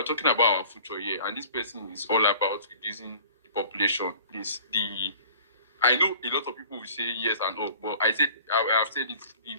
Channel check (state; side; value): inverted; both; correlation -0.47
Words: talking about our future here, and this person is all about reducing the population. I know a lot of people will say yes and no, but I've said it, the